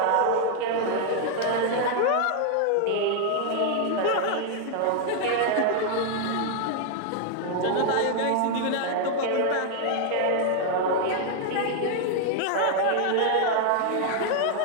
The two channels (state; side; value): different; both; correlation 0.00